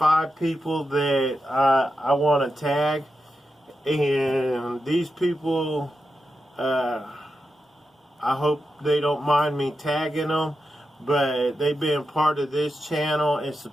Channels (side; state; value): both; normal; correlation 0.89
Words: people that I want to tag, and these people, I hope they don't mind me tagging them, but they've been part of this channel and